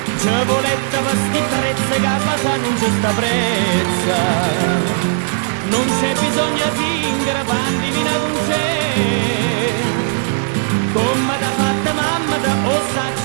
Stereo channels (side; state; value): left; silent; digital silence